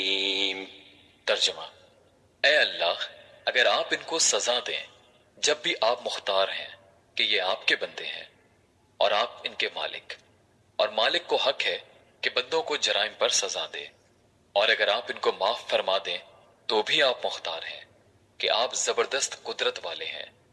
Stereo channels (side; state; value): both; identical; correlation 1.00